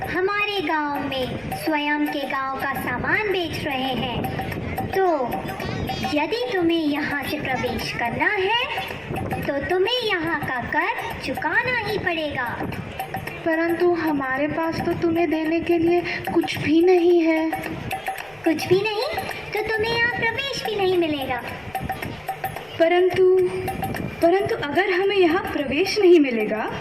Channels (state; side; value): noise; left; rumble, 28 dB below the sound